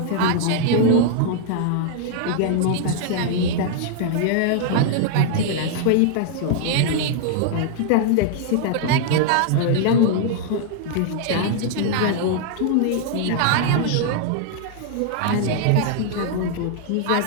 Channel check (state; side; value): different; both; correlation -0.01